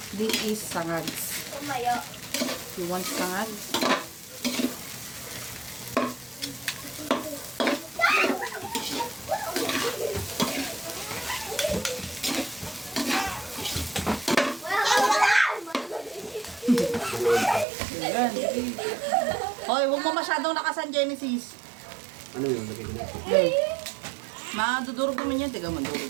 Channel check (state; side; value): drops out; left; at 17.7 s